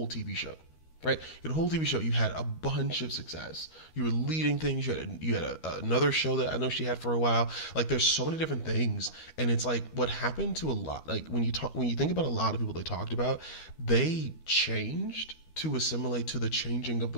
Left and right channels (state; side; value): late; right; 13 ms